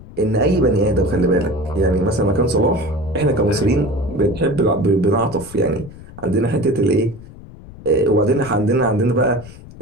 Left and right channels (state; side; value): noise; left; rumble, 18 dB below the sound